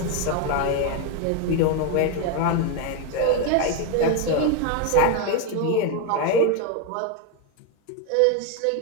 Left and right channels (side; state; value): both; different; correlation 0.02